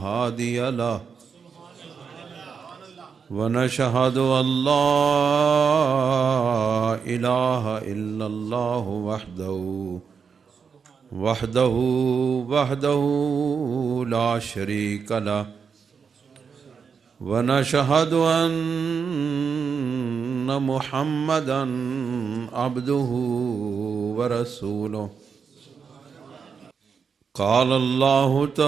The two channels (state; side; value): quieter; left; 6.1 dB